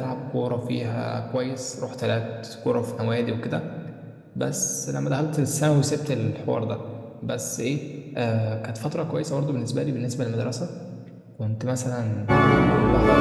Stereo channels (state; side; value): identical; both; correlation 1.00